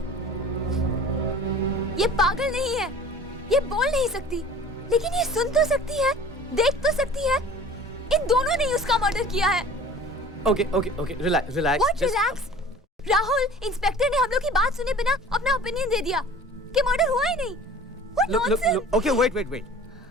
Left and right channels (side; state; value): both; normal; correlation 0.44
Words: ये पागल नहीं है, ये बोल नहीं सकती, लेकिन ये सुन तो सकती है, देख तो सकती है। इन दोनों ने ही उसका मर्डर किया है। Okay, relax. What relax? Rahul, inspector ने हम लोग की बात सुने बिना अपना ओपिनियन दे दिया कि मर्डर हुआ ही नहीं। What nonsense? Okay, wait.